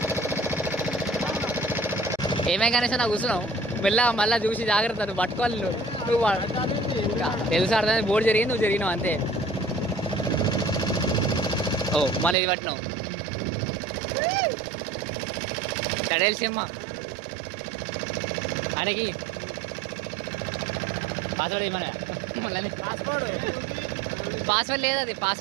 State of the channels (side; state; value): left; drops out; at 12.4 s